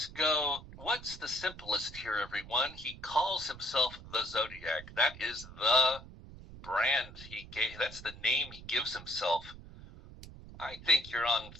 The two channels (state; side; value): noise; right; rumble, 16 dB below the sound